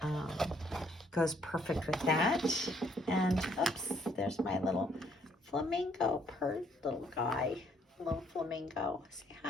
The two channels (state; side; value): normal; both; correlation 0.66